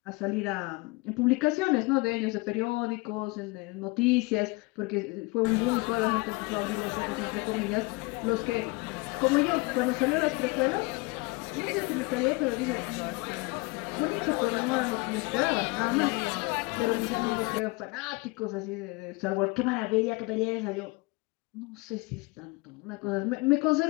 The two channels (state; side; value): quieter; right; 25.8 dB